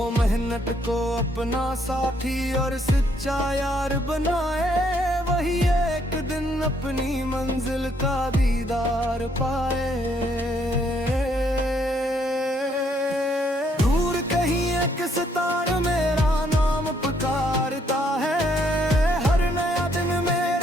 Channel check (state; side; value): normal; both; correlation 0.70